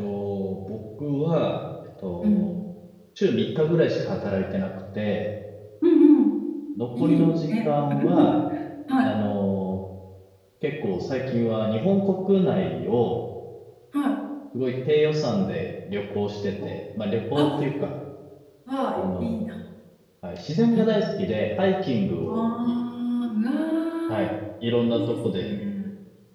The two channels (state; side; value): identical; both; correlation 1.00